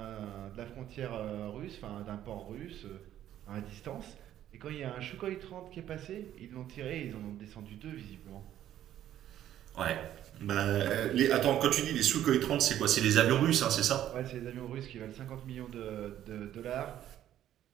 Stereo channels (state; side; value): quieter; left; 11.8 dB